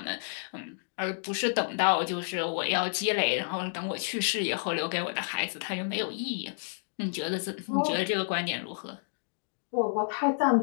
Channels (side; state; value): right; silent; digital silence